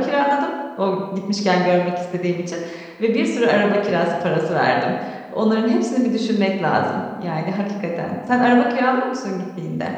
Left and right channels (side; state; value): both; identical; correlation 1.00